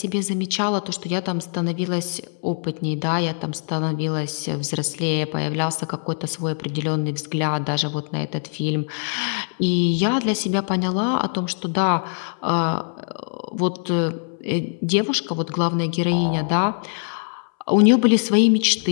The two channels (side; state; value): right; silent; 62 dB below the other